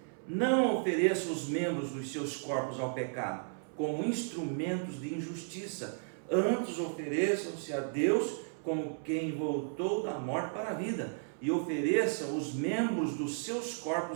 Não ofereça os membros dos seus corpos ao pecado como instrumentos de injustiça, antes ofereçam-se a Deus como quem voltou da morte para a vida, e ofereça os membros dos seus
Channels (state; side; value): silent; left; 55 dB below the other